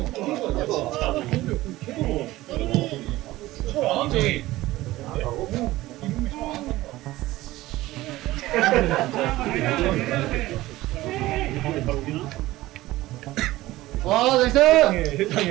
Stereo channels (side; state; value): left; quieter; 17.3 dB